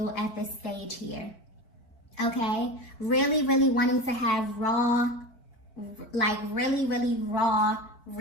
at this stage here. Okay, really, really wanting to have raw, like really, really raw,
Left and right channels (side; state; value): right; late; 4.5 ms